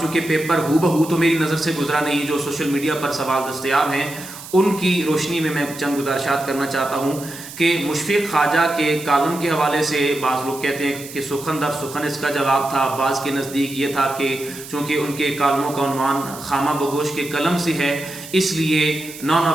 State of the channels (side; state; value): right; noise; hiss, 14 dB below the sound